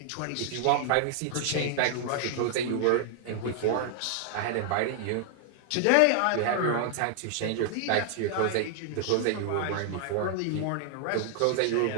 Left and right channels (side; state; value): both; different; correlation 0.00